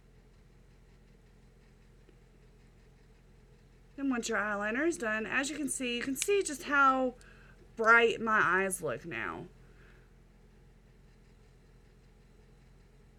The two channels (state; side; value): identical; both; correlation 1.00